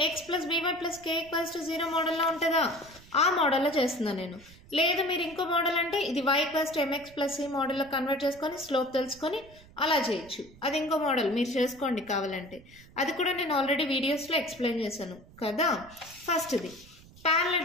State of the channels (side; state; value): right; noise; rumble, 23 dB below the sound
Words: x plus by plus k equals to 0 మోడల్లో ఉంటుందా ఆ మోడల్లో చేస్తున్నాను నేను లేదు మీరు ఇంకో మోడల్ అంటే ఇది y equals to mx plus c మోడల్లో కన్వర్ట్ చేసుకొని స్లోప్ తెలుసుకొని అలా చేయొచ్చు అది ఇంకో మోడల్ మీరు చేసుకోండి కావాలంటే అది కూడా నేను ఆల్రెడీ వీడియోస్లో ఎక్స్ప్లెయిన్ చేశాను కదా ఫస్ట్ ఇది